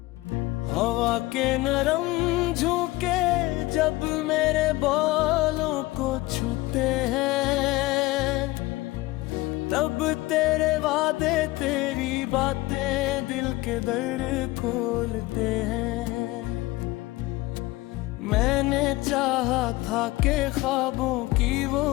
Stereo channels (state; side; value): quieter; right; 19.6 dB